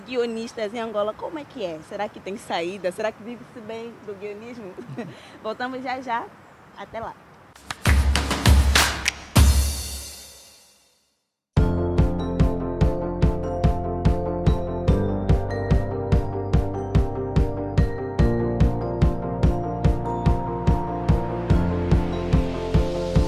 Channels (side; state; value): both; identical; correlation 1.00